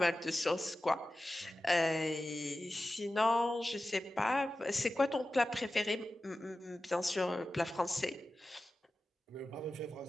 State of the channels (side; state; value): both; normal; correlation 0.94